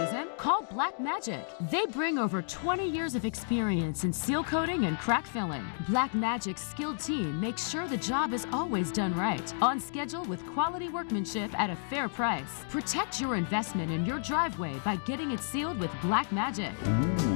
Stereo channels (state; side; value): silent; right; digital silence